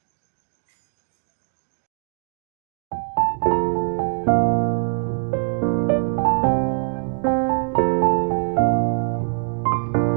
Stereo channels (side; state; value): left; silent; digital silence